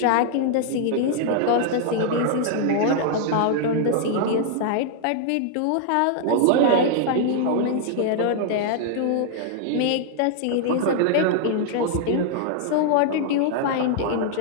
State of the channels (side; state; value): both; different; correlation -0.01